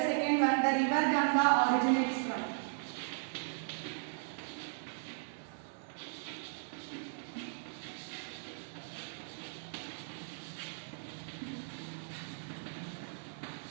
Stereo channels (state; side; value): silent; left; 53 dB below the other